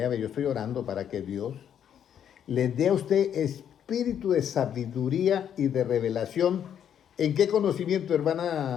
estoy orando para que Dios les dé a usted espíritu de sabiduría y de revelación. ¿En qué conocimiento,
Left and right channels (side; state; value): right; quieter; 9.2 dB